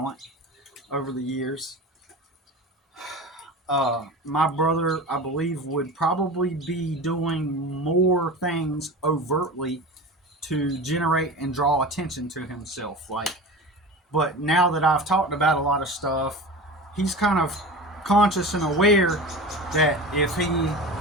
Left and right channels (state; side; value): normal; both; correlation 0.32